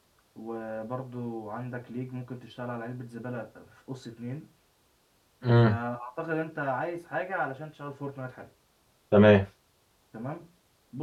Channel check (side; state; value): both; identical; correlation 1.00